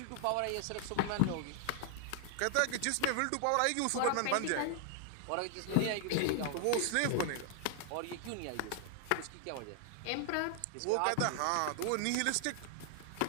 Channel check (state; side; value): different; both; correlation 0.00